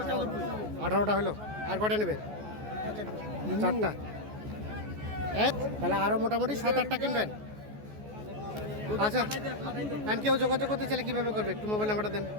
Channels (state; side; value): late; left; 14 ms